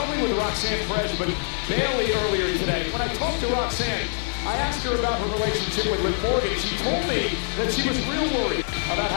only with Roxanne Perez, but Bailey earlier today. When I talked to Roxanne, I asked her about her relationship with Liv Morgan. She told me that she was real worried about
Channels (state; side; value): silent; right; 60 dB below the other